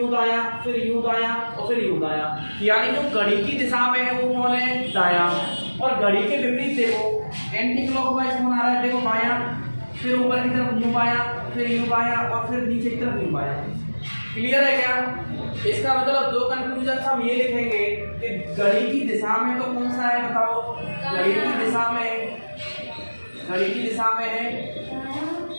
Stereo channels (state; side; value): inverted; both; correlation -1.00